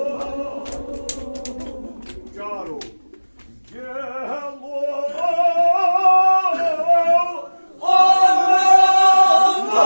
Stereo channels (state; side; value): inverted; both; correlation -1.00